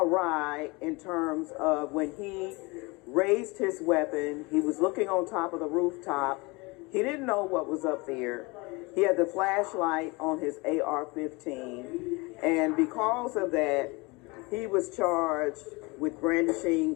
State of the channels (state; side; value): quieter; right; 25.9 dB